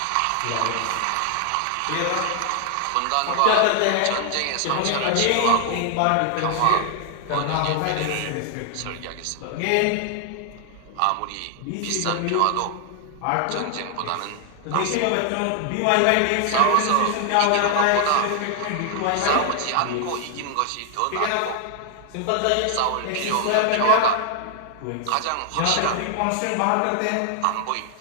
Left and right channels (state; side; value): different; both; correlation 0.00